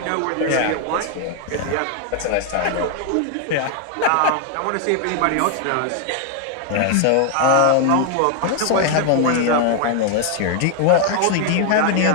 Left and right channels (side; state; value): both; different; correlation 0.00